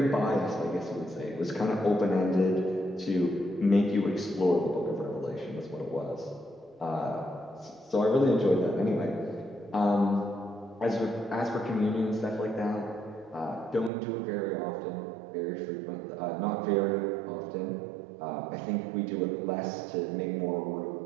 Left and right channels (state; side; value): drops out; left; at 13.9 s